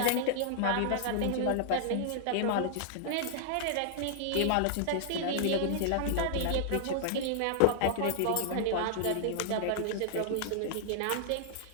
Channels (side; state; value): both; different; correlation -0.01